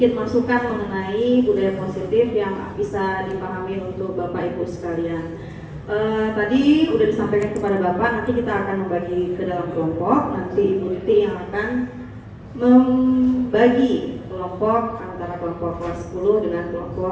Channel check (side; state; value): both; identical; correlation 1.00